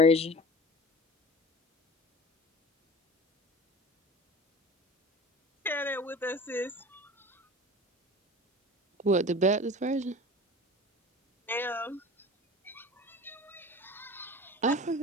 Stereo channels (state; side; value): normal; both; correlation 0.38